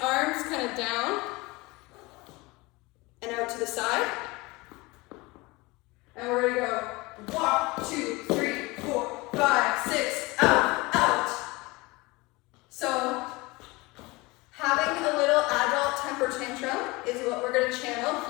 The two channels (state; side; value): quieter; right; 23.3 dB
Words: arms kind of down and out to the side. And we're gonna go walk, 2, 3, 4, 5, 6, out, out. So having a little adult temper tantrum is what we're gonna channel